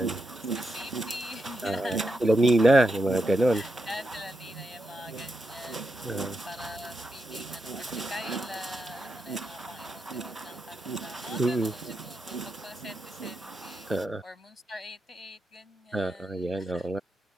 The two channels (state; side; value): normal; both; correlation 0.86